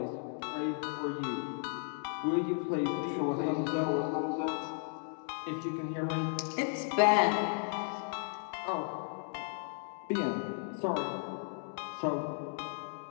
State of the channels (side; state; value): right; silent; 55 dB below the other